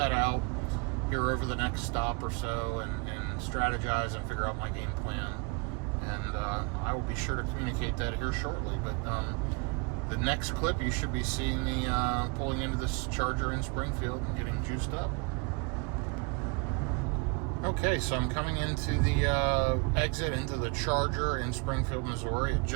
out here over the next stop or so and strategize and figure out my game plan. And I will be sure to communicate that here shortly. But the next clip, you should be seeing me pulling into this charger in Springfield and getting juiced up. Okay, so I'm coming into the exit into the charger in Springfield, Missouri. It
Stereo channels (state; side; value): quieter; left; 31.3 dB